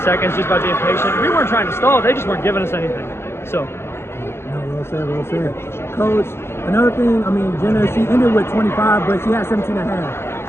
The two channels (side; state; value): right; late; 0.12 ms